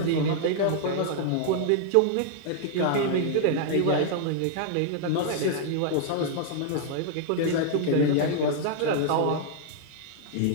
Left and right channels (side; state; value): both; different; correlation -0.01